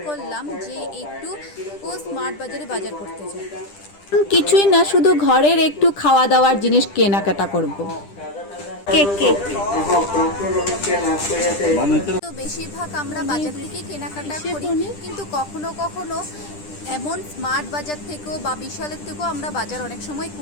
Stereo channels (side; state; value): right; late; 10 ms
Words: করলাম যে একটু স্মার্ট বাজারে বাজার করতে যাই। কিছুই না, শুধু ঘরের একটু খাওয়া দাওয়ার জিনিস কেনাকাটা করব। কেক কেক তো বেশিরভাগ আমরা বাজার থেকে কেনাকাটা করি, কিন্তু কখনো কখনো এমন স্মার্ট বাজার থেকেও বা বিশালের থেকেও আমরা বাজার অনেক সময়